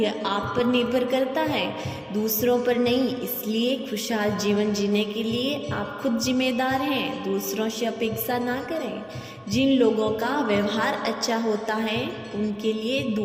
यह आप पर निर्भर करता है, दूसरों पर नहीं। इसलिए खुशहाल जीवन जीने के लिए आप खुद जिम्मेदार हैं, दूसरों से अपेक्षा ना करें। जिन लोगों का व्यवहार अच्छा होता है उनके लिए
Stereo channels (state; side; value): identical; both; correlation 1.00